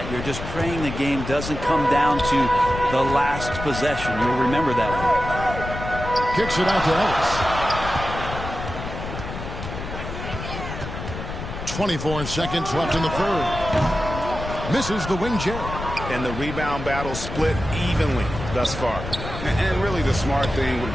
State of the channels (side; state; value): left; noise; rumble, 8 dB below the sound